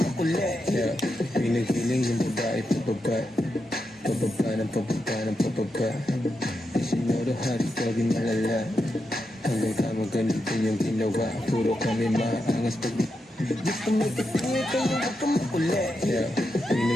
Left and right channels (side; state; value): both; normal; correlation 0.86